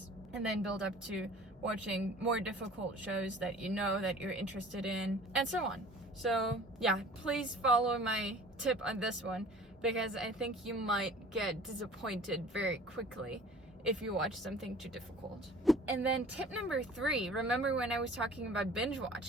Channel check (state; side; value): normal; both; correlation 0.46